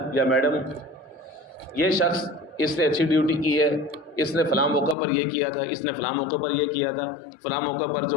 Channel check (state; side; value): drops out; right; at 5.0 s